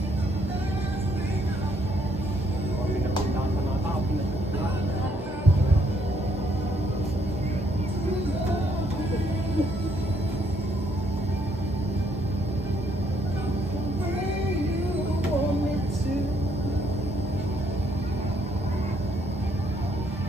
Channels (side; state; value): both; normal; correlation 0.70